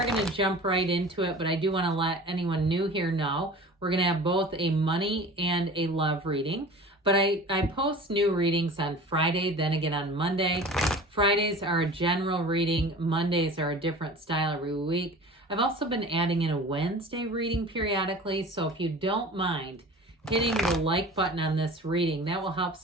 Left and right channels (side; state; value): both; normal; correlation 0.40